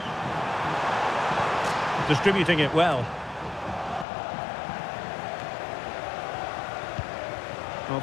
Distributing it well. Well,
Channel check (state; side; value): drops out; right; at 4.0 s